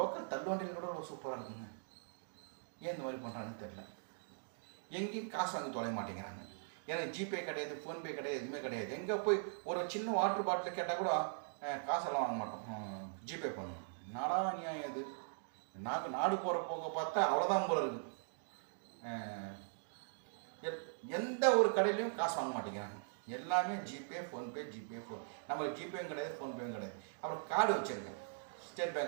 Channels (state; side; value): silent; left; digital silence